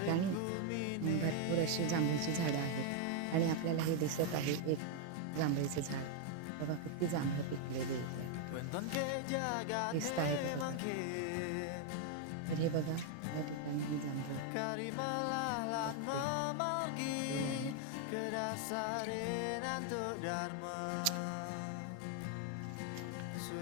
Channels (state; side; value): different; both; correlation 0.00